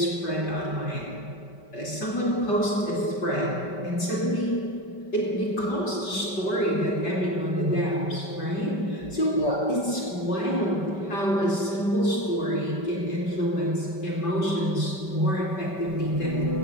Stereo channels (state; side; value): late; right; 5.2 ms